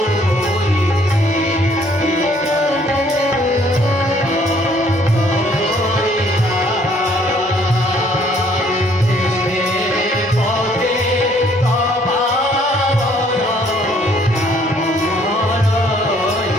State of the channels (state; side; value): normal; both; correlation 0.62